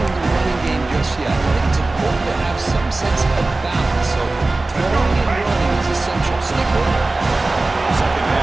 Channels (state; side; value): quieter; left; 3.2 dB